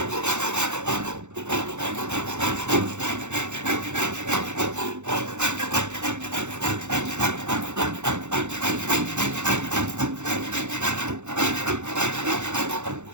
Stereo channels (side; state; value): left; late; 0.83 ms